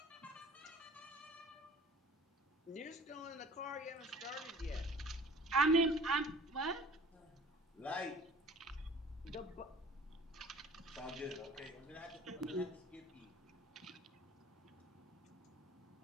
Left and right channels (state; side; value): normal; both; correlation 0.48